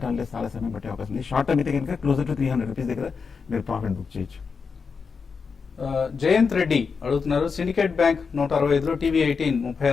చాలా సమయం పట్టే అవకాశం ఉంది. షార్ట్ టర్మ్ అయితే కనుక క్లోజర్ టు 300 రూపీస్ దగ్గర మీరు ప్రాఫిట్ బుక్ చేయొచ్చు. జయంత్ రెడ్డి అడుగుతున్నారు. సిండికేట్ బ్యాంక్ 165లో, TV18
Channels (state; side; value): quieter; right; 5.4 dB